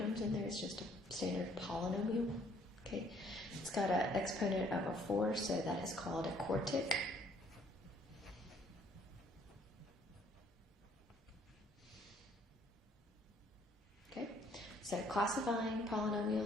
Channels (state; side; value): normal; both; correlation 0.62